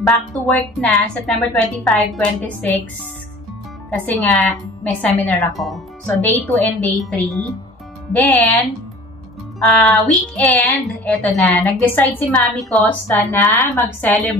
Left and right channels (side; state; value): both; normal; correlation 0.45